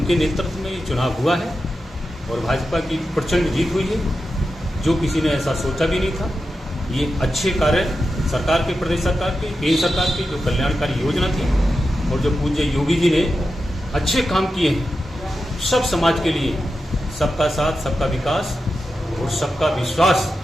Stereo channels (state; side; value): normal; both; correlation 0.90